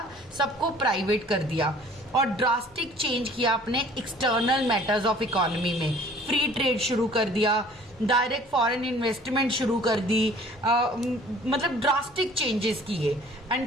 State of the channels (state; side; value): noise; right; rumble, 28 dB below the sound